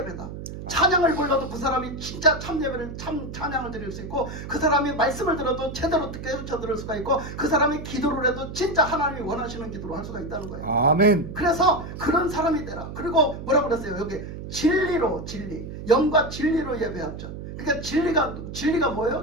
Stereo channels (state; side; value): noise; right; hum, 9 dB below the sound